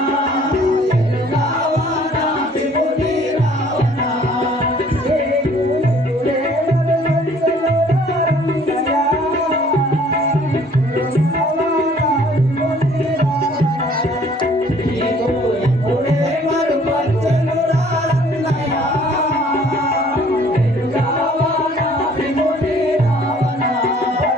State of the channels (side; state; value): both; normal; correlation 0.56